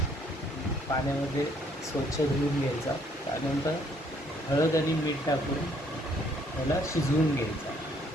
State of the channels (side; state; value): both; normal; correlation 0.65